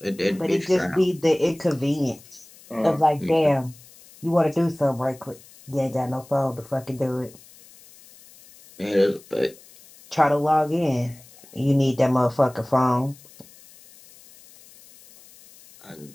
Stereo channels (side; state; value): left; noise; hiss, 24 dB below the sound